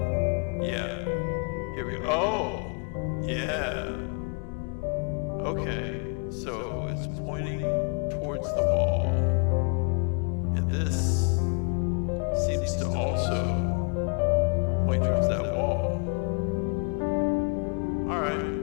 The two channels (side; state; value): right; quieter; 36.8 dB